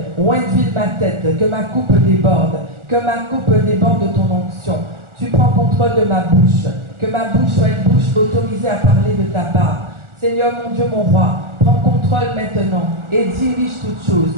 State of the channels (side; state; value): left; late; 1.4 ms